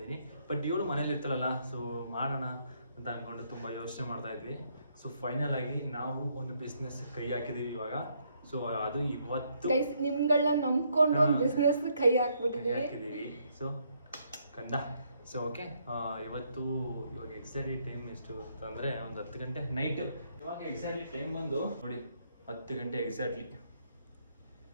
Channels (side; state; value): both; inverted; correlation -0.72